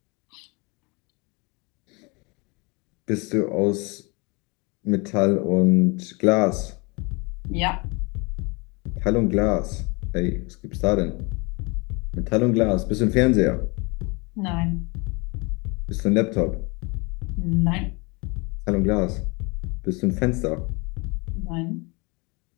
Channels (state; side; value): quieter; right; 28.6 dB